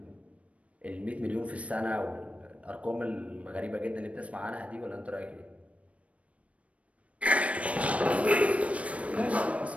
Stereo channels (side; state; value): left; late; 0.064 ms